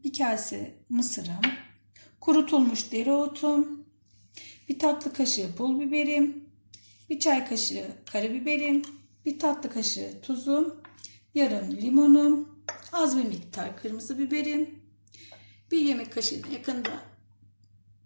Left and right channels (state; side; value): inverted; both; correlation -1.00